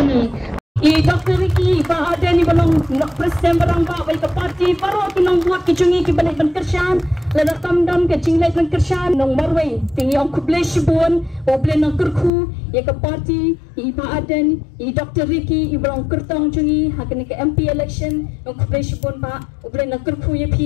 I Dr. Ricky ba ada ni balong presiden barang ba baik ke parti baru ki nong buat ki cungi ki balik ban kersan la tam dam ke cinglai ban kersan nong marwai tingi ong kublai shibun o blai nong kerku ya ke parti I ba aden I Dr. Ricky I balong kertong cungi hakini ke MP election nong kublai shibun ba o blai nong kerku ya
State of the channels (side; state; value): right; drops out; at 12.3 s